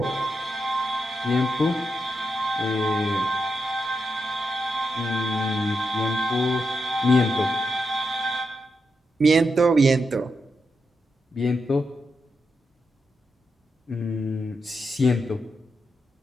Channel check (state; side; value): normal; both; correlation 0.85